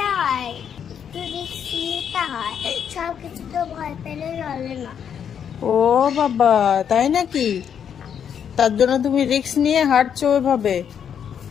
হয়? একটু রিস্ক নিতে হয়, সব কিছু তো ভয় পেলে চলে না। ও বাবা, তাই নাকি? তার জন্য তুমি রিস্ক নিয়ে হাঁটছো ওইভাবে?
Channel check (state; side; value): quieter; right; 8.2 dB